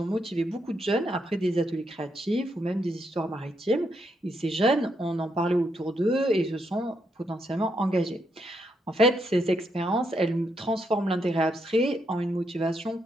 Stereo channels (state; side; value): normal; both; correlation 0.78